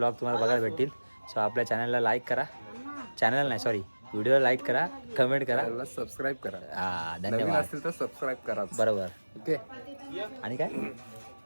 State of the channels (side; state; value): both; inverted; correlation -1.00